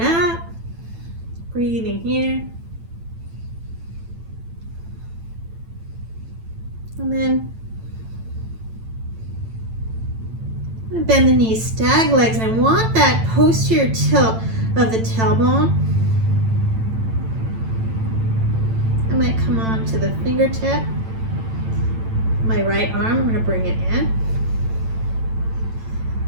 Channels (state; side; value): late; left; 9.0 ms